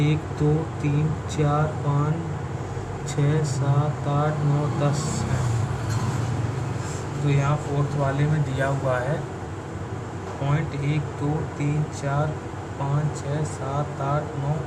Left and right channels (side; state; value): both; identical; correlation 1.00